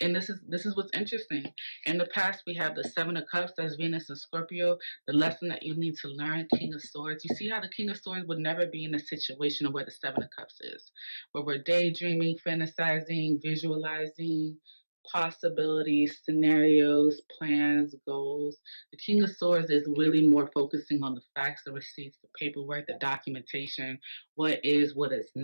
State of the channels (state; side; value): inverted; both; correlation -1.00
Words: and this is what's interesting. In the past, we have the Seven of Cups, that's Venus and Scorpio. The lesson that you need to learn, King of Swords. You see how the King of Swords would never be in a situation of where the Seven of Cups is, where we're daydreaming, fantasizing, visualizing possibilities, scenarios, plans, goals. The King of Swords is really more focusing on the facts, the receipts, the paperwork, the documentation, what is, what is